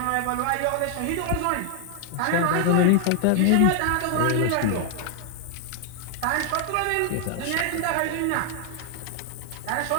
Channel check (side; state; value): both; different; correlation 0.00